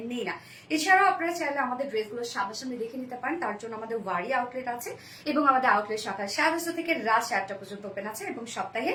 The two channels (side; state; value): both; identical; correlation 1.00